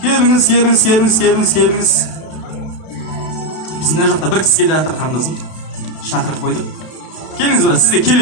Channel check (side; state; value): right; late; 32 ms